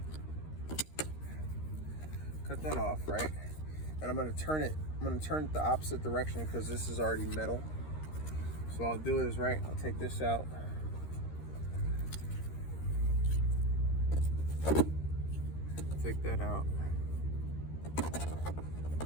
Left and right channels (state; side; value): late; right; 13 ms